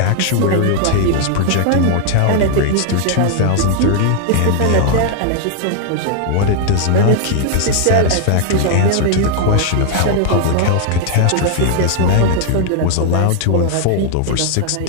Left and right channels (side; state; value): both; different; correlation 0.00